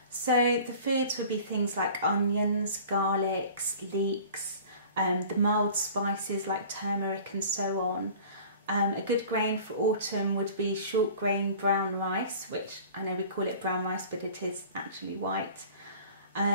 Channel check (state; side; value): inverted; both; correlation -0.44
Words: So the foods would be things like onions, garlics, leeks, the mild spices like turmeric and so on. A good grain for autumn would be short grain brown rice, which I know we call it brown rice, but it is actually white.